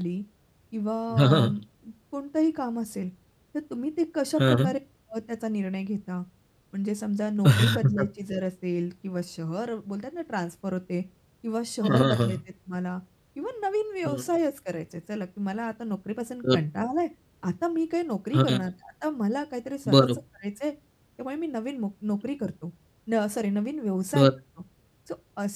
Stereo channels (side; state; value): both; identical; correlation 1.00